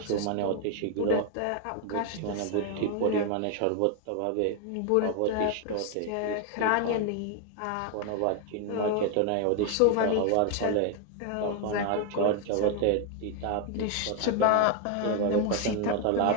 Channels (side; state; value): both; different; correlation 0.01